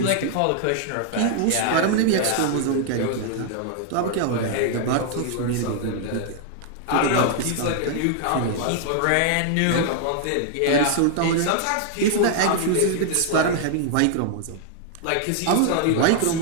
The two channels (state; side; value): different; both; correlation 0.00